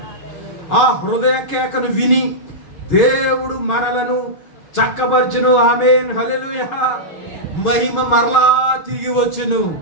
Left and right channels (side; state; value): right; late; 6.3 ms